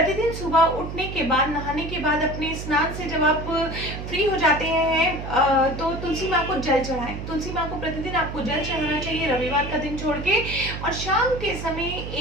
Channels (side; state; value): right; noise; hum, 7 dB below the sound